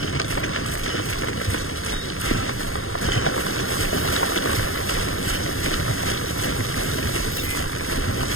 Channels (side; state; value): right; late; 0.60 ms